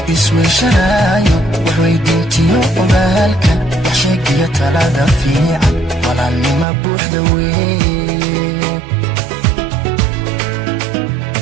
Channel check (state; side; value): drops out; left; at 6.7 s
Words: isweyshanaayo wax weydiintiyo ogaalka wax sheegiyo talada fiican walaalnima buuxda weeye